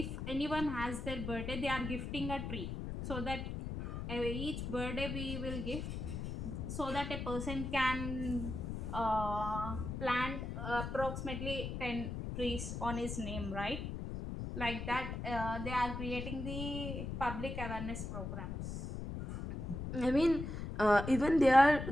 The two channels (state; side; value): noise; left; rumble, 5 dB below the sound